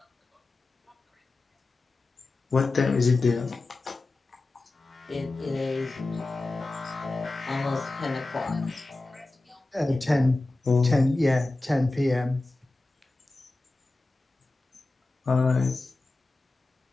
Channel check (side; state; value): right; quieter; 3.1 dB